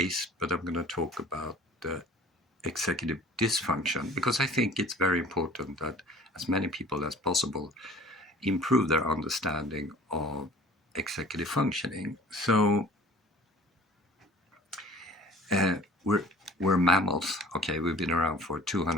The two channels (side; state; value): both; normal; correlation 0.48